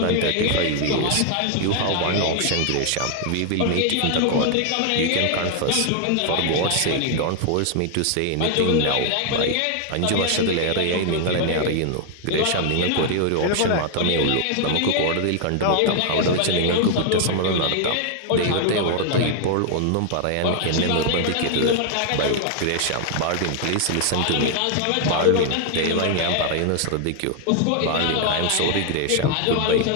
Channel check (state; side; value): different; both; correlation 0.00